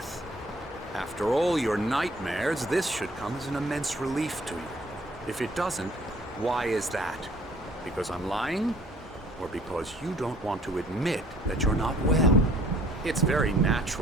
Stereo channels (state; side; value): normal; both; correlation 0.57